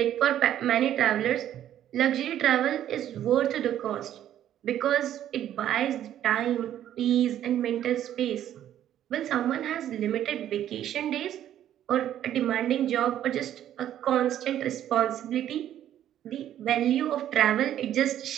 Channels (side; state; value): left; quieter; 11.3 dB